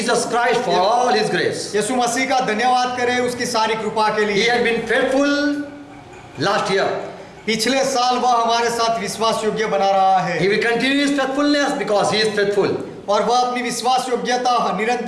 Christ for all His grace. यीशु मसीह का धन्यवाद करें उसकी सारी कृपा के He लिए। had been faithful last year. पिछले साल वह हमारे साथ विश्वास योग्य बना रहा है। He will continue His faithfulness because He is faithful. और वह अपनी विश्वास योग्यता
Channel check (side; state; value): both; identical; correlation 1.00